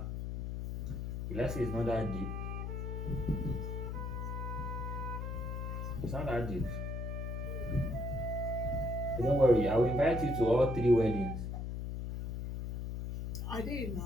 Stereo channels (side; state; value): left; noise; hum, 4 dB below the sound